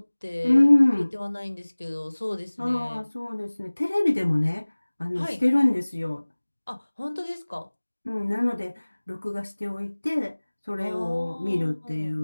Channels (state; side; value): inverted; both; correlation -1.00